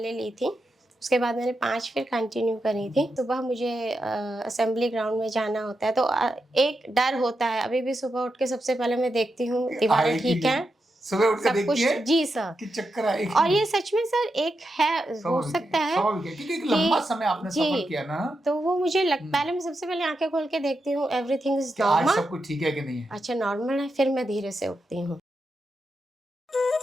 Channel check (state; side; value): normal; both; correlation 0.87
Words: ली थी, उसके बाद मैंने 5 फिर कंटिन्यू करी थी। सुबह मुझे असेंबली ग्राउंड में जाना होता है तो एक डर होता है। अभी भी सुबह उठ के सबसे पहले मैं देखती हूँ दीवारें ठीक हैं, सुबह उठ के सब देखती कुछ है जी सर कि चक्कर आएगी। और ये सच में सर एक है, हो सकता है क्योंकि एक लंबा समय आपने सफर किया ना, तो वो मुझे पहले मैं सबसे पहले आंखें खोल के देखती हूँ एवरीथिंग इज कि आज नॉर्मल, सब कुछ ठीक है कि नहीं है। अच्छा नॉर्मल है, फिर मैं धीरे से उठती हूँ।